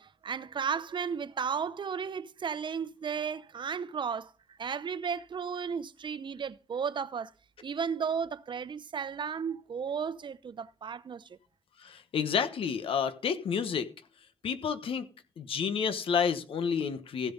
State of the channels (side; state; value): both; normal; correlation 0.38